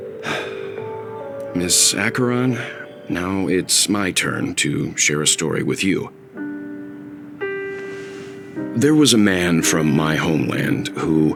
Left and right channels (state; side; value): identical; both; correlation 1.00